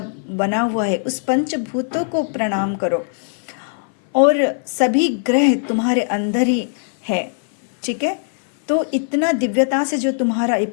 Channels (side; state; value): right; silent; 59 dB below the other